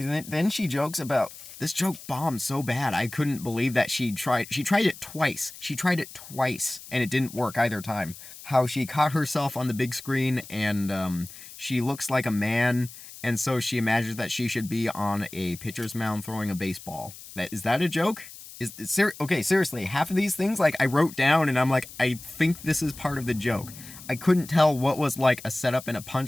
she jokes about, this joke bombed so bad, I couldn't believe that she tried it twice. She tried it twice, and it didn't work either time. how she caught herself on the big screen and she looks like a man, and so she imagines that she should be on a pitcher's mound throwing a baseball. Is that a joke? Okay, seriously, half of these things, like, I wrote down and I'm like, I think this is part of the joke. I couldn't tell what was like a setup and a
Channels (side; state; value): left; noise; hiss, 16 dB below the sound